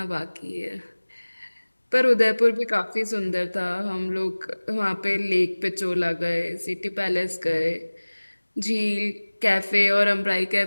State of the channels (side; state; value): both; inverted; correlation -1.00